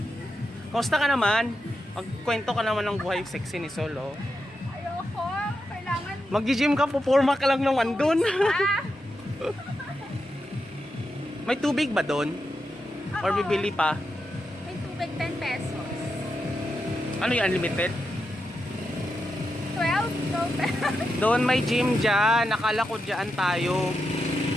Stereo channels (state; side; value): normal; both; correlation 0.87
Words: Kumusta ka naman? Magkwento ka naman ng buhay sexy ni Sol, oh. Ayoko. Kailangan... Mag-gym ka, pupurma ka lang naman dun. Ah! May tubig ba dun? Or bibili pa? May tubig 10 pesos. Ano yung unlimited? 12 pesos. Doon may gym dyan. Nakala ko dyan tayo.